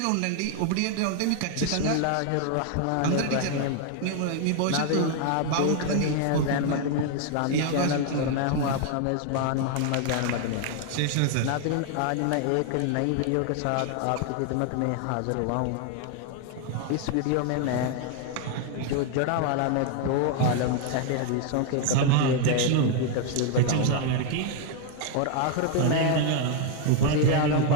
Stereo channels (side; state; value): both; different; correlation 0.00